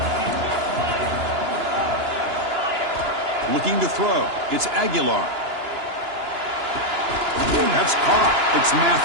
Looking to throw. It's Aguilar. That's caught. It's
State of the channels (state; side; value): late; left; 2.9 ms